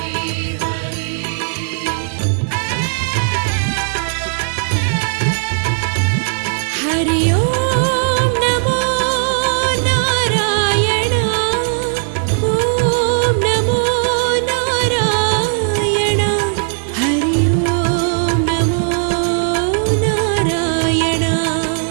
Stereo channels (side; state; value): left; silent; 68 dB below the other